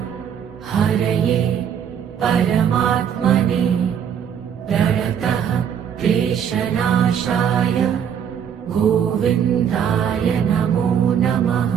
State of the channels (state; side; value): quieter; left; 8.3 dB